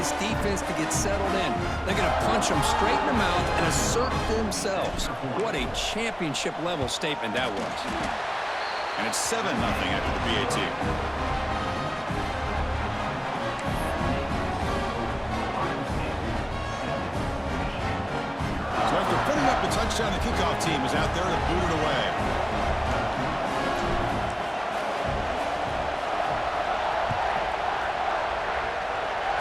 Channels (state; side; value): identical; both; correlation 1.00